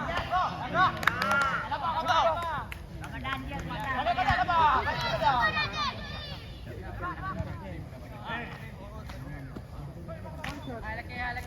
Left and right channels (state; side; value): identical; both; correlation 1.00